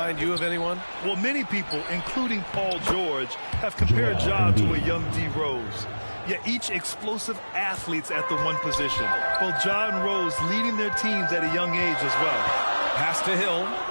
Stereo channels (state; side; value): inverted; both; correlation -1.00